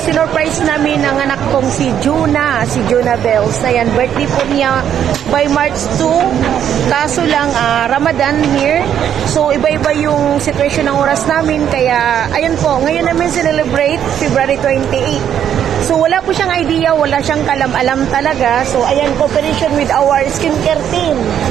namin ang anak kong si Jonah Bells. Ayan, birthday po niya by March 2. Kaso lang, Ramadan here. So, iba-iba yung situation ng oras namin. Kaya, ayun po, ngayon namin celebrate February 28. So, wala po siyang idea, wala siyang kalam-alam talaga. So, ayan, cooperation with our skincare team.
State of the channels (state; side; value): quieter; left; 9.5 dB